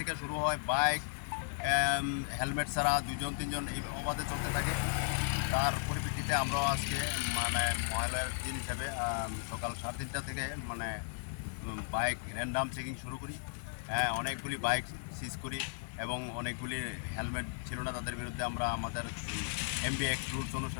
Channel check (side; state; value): right; silent; 54 dB below the other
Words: শুরু হয় bike helmet ছাড়া দুজন তিনজন এই অবাধে চলতে থাকে তার পরিপ্রেক্ষিতে আমরাও আজকে মহলের দিন হিসাবে সকাল ৩:৩০ থেকে বাইক র্যান্ডাম চেকিং শুরু করি অনেকগুলি বাইক সিজ করি এবং অনেকগুলি হেলমেট ছিল না তাদের বিরুদ্ধে আমরা আমাদের এমবি অ্যাক্ট রুলস